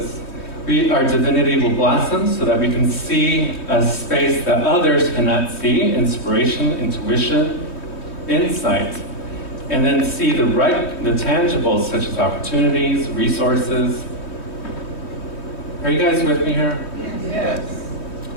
our divinity will blossom so that we can see a space that others cannot see, inspiration, intuition, insight, and then see the tangibles such as opportunities, resources. Are you guys with me here? Yes.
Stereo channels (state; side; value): late; right; 3.1 ms